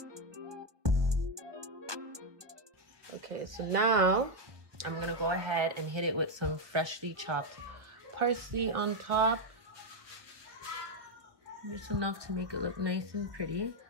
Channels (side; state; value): left; late; 1.2 ms